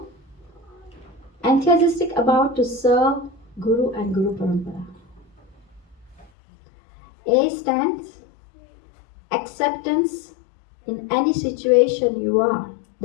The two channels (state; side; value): drops out; right; at 6.3 s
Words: enthusiastic about to serve Guru and Guru Parampara. A stands acceptance in any situation you are